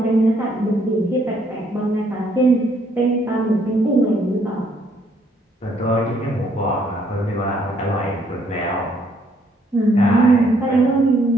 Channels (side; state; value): both; normal; correlation 0.68